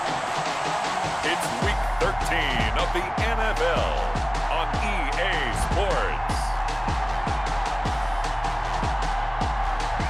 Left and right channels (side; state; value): both; identical; correlation 1.00